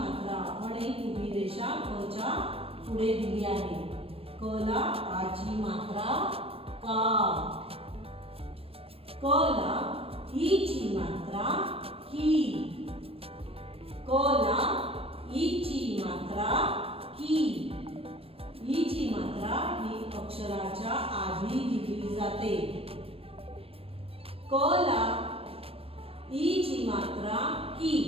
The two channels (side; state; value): left; late; 0.28 ms